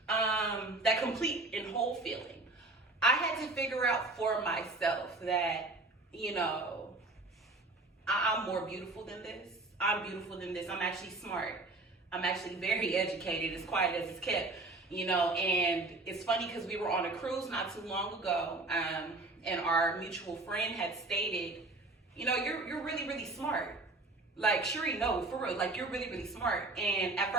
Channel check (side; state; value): left; quieter; 3.0 dB